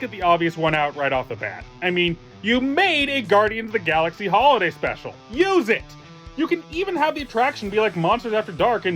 the obvious one out right off the bat. I mean, you made a Guardians of the Galaxy holiday special. Use it! You can even have the attraction be like Monsters After Dark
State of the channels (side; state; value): both; identical; correlation 1.00